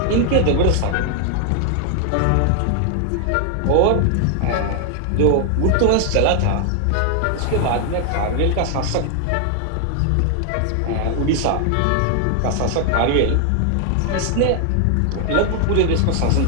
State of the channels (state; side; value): different; both; correlation 0.00